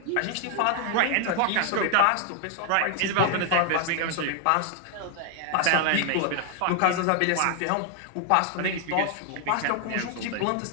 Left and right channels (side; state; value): both; different; correlation 0.00